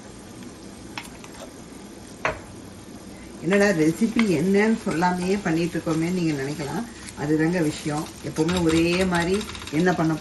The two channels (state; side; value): identical; both; correlation 1.00